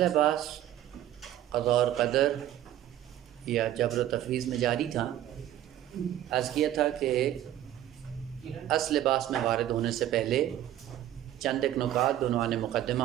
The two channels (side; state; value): left; quieter; 12.4 dB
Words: بحث قضاء اور قدر یا جبر و تفویض میں جاری تھا۔ عرض کیا تھا کہ اصل بحث میں وارد ہونے سے پہلے چند ایک نکات بعنوان